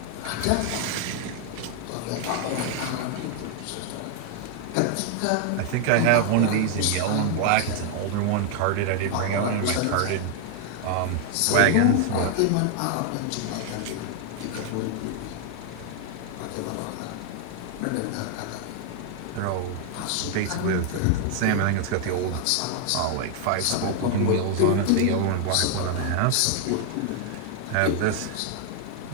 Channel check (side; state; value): both; different; correlation 0.00